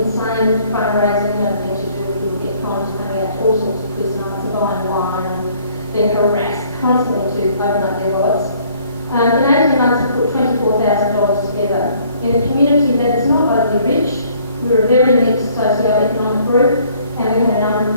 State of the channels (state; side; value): inverted; both; correlation -0.60